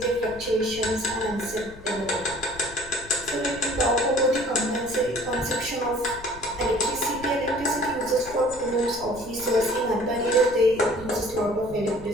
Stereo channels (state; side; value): noise; left; rumble, 18 dB below the sound